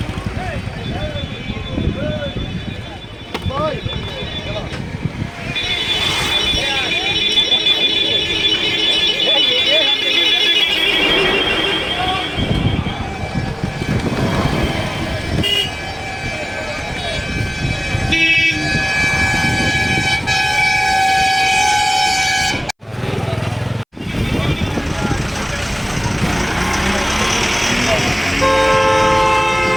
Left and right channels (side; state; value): both; identical; correlation 1.00